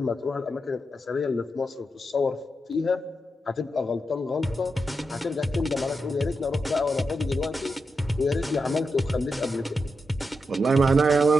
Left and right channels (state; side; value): normal; both; correlation 0.86